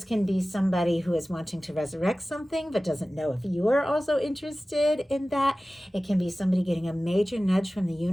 can be somebody who is wanting to resurrect something but doesn't know if you are also interested in that. It can be somebody getting a major nudge from the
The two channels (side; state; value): both; normal; correlation 0.97